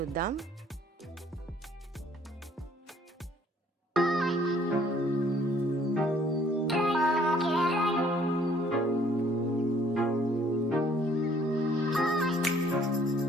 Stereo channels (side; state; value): both; normal; correlation 0.60